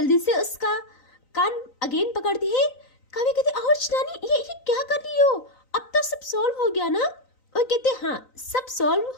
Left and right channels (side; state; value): right; late; 3.9 ms